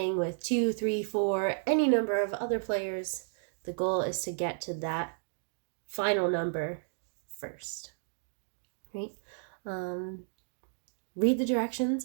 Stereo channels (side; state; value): left; silent; digital silence